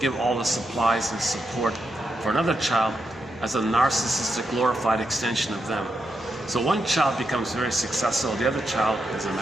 give all the supplies and support for another child as a narcissistic, glorified extension of them. So one child becomes very successful, the other child is a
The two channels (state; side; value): normal; both; correlation 0.84